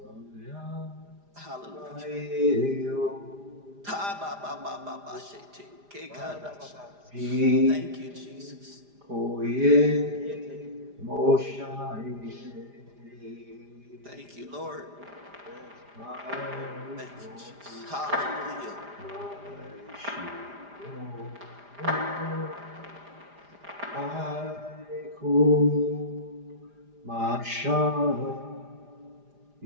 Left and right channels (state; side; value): late; left; 4.9 ms